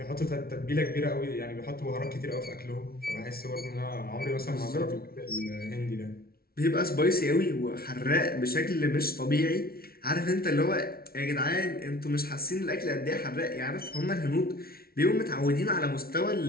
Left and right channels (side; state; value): right; late; 0.44 ms